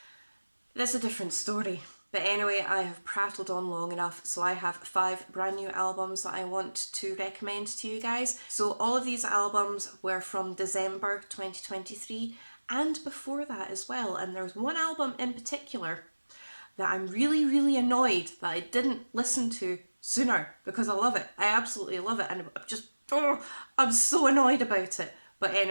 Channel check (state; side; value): inverted; both; correlation -1.00